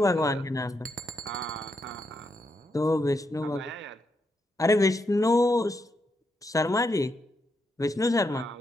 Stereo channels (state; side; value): normal; both; correlation 0.81